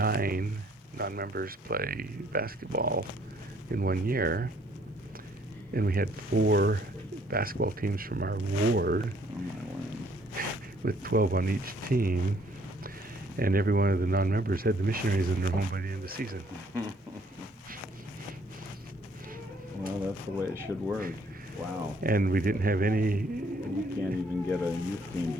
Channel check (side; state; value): both; normal; correlation 0.63